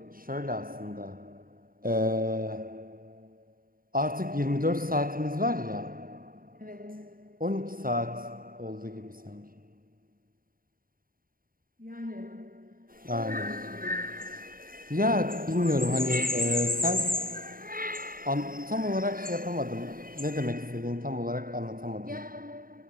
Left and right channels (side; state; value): left; late; 0.41 ms